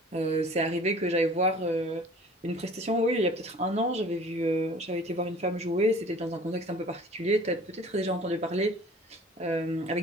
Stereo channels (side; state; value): both; normal; correlation 0.47